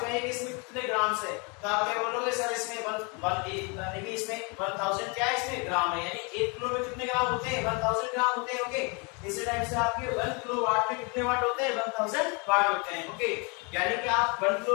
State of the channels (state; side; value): quieter; right; 31.9 dB